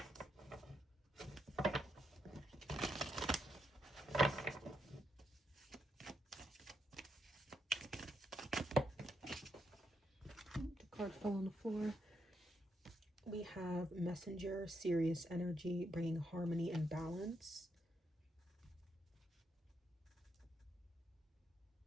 The card fell on the floor. We have Messenger, serious energy, bringing harmony and balance.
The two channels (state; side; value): normal; both; correlation 0.79